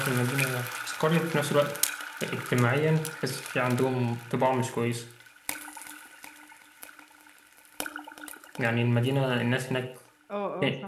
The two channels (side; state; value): both; identical; correlation 1.00